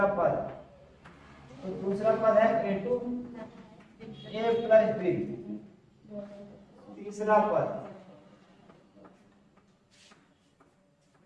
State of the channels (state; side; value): identical; both; correlation 1.00